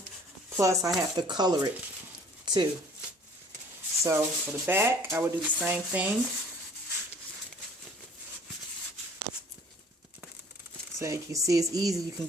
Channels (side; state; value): both; normal; correlation 0.53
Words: Plus, I have to color it too. So, for the back, I would do the same thing. So, you can see it's easy. You can